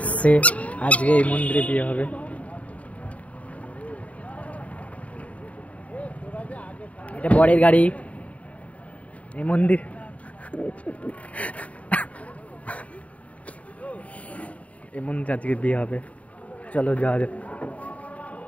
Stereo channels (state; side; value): late; right; 0.067 ms